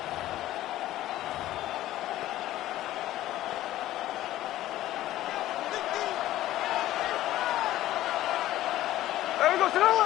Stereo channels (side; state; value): right; quieter; 14.5 dB